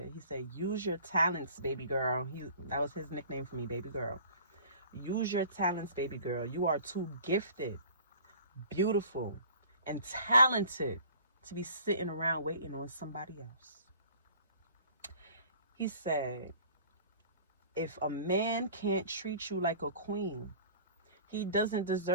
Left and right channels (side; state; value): both; inverted; correlation -0.47